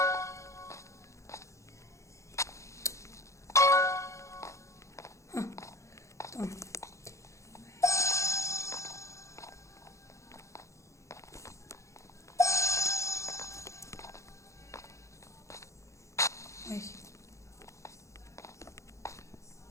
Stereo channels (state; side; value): late; right; 0.15 ms